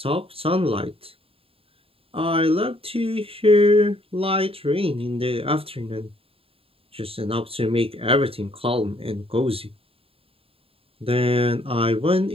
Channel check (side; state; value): left; late; 0.27 ms